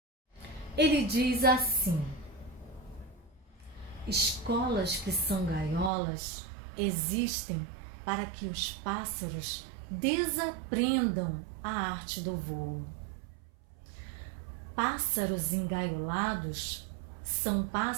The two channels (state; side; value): drops out; left; at 5.9 s